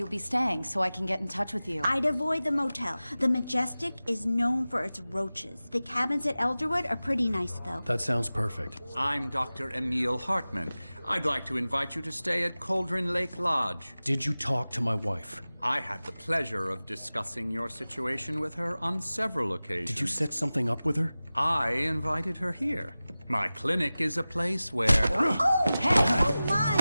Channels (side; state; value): both; inverted; correlation -0.97